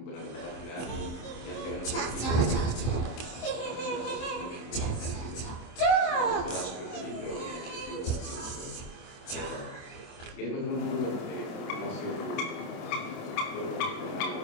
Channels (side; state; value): right; late; 27 ms